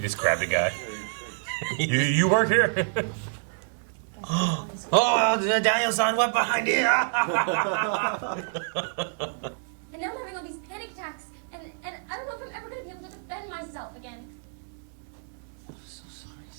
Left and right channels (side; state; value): left; silent; digital silence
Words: just grabbed a guy. you work here? Oh, Daniel-san, what behind you? And now I'm having all these panic attacks, and I don't know if I'm ever going to be able to defend myself again. I'm so sorry,